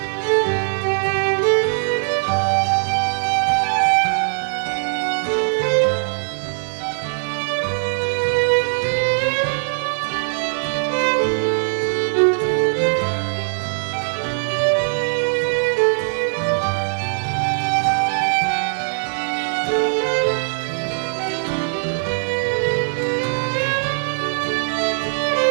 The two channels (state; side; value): silent; left; 65 dB below the other